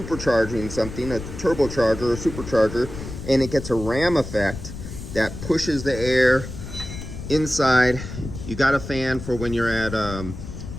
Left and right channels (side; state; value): left; noise; rumble, 10 dB below the sound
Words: something, a turbocharger or supercharger, and it gets a ram effect that pushes the air inside. You got a fan for when you're at